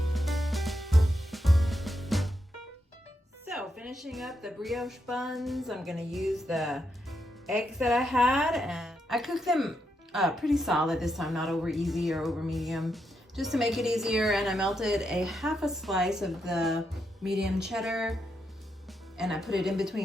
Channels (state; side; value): normal; both; correlation 0.82